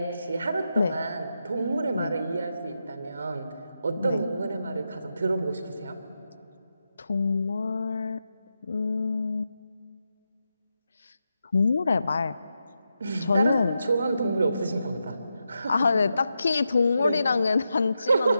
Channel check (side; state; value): both; inverted; correlation -0.87